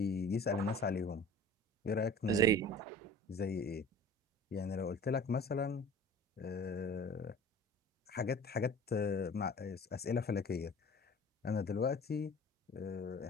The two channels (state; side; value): normal; both; correlation 0.43